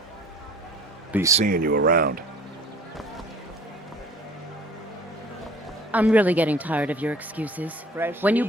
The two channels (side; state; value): both; normal; correlation 0.49